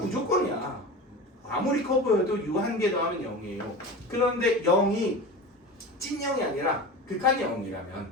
아무리 커 보여도 유한 개 더하면 0이에요. 그런데 0이 찐 0이 아니라 극한 0이라면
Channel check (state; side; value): normal; both; correlation 0.31